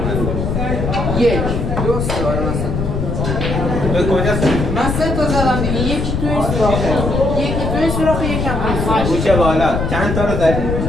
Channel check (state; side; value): noise; left; rumble, 2 dB below the sound